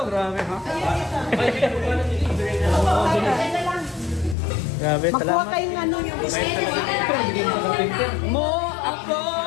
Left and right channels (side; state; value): right; drops out; at 4.4 s